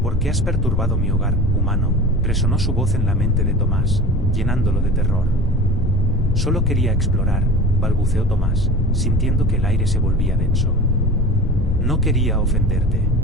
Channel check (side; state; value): left; noise; rumble, 7 dB below the sound